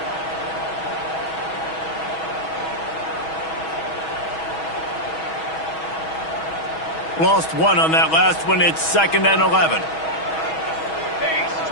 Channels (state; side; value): late; right; 6.2 ms